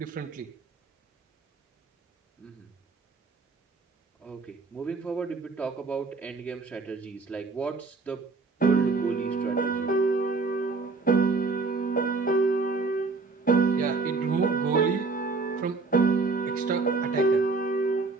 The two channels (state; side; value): quieter; left; 4.1 dB